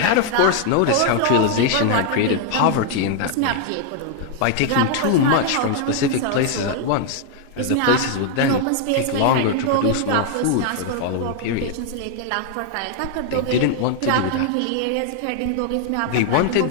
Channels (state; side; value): different; both; correlation 0.00